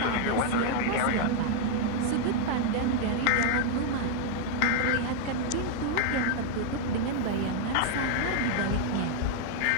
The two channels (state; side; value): different; both; correlation 0.00